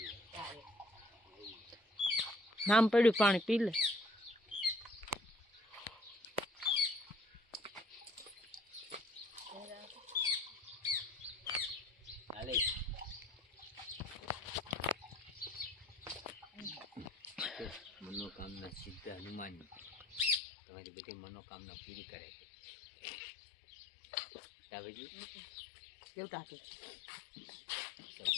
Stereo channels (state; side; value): drops out; right; at 20.4 s